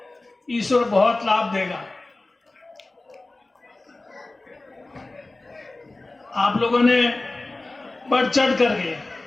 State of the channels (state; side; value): quieter; right; 3.0 dB